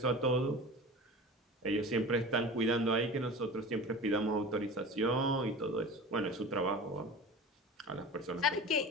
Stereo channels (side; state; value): both; normal; correlation 0.35